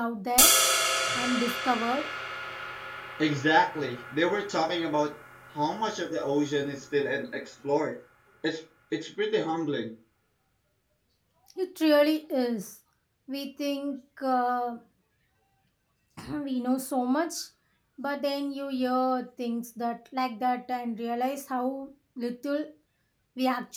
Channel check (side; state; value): both; identical; correlation 1.00